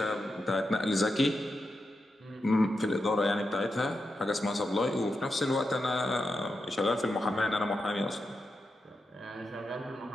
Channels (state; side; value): normal; both; correlation 0.87